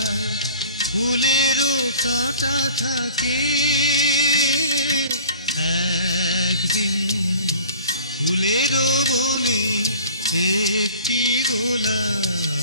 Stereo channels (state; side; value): inverted; both; correlation -0.45